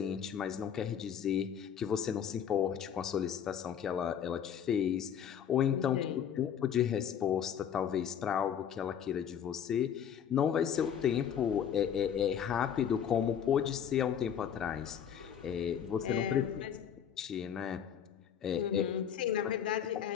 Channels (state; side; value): quieter; right; 8.7 dB